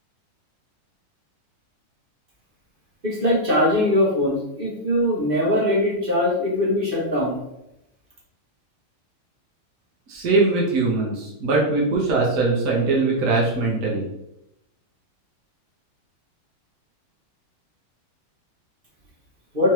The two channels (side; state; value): left; late; 2.6 ms